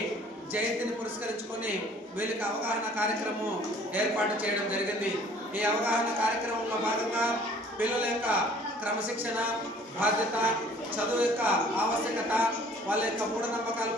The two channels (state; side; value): normal; both; correlation 0.54